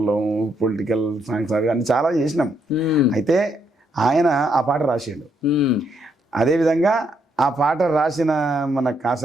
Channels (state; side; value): normal; both; correlation 0.75